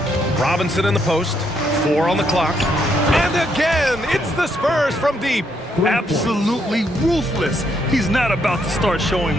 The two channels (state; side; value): normal; both; correlation 0.75